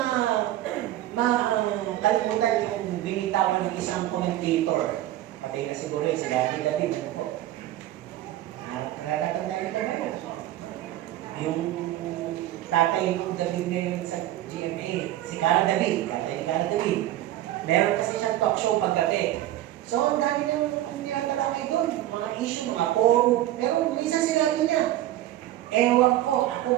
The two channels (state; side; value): quieter; left; 14.1 dB